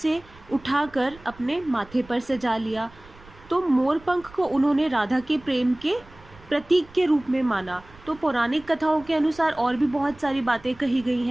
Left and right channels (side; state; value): right; noise; rumble, 23 dB below the sound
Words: उठाकर अपने माथे पर सजा लिया। तो मोर पंख को उन्होंने राधा के प्रेम के प्रतीक के रूप में माना। तो पौराणिक कथाओं के अनुसार और भी बहुत सारी बातें कही गई